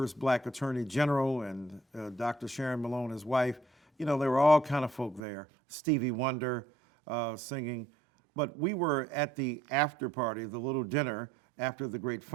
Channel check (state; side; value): drops out; left; at 5.2 s